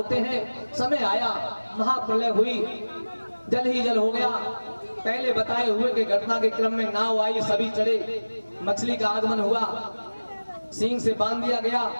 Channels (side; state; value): both; inverted; correlation -1.00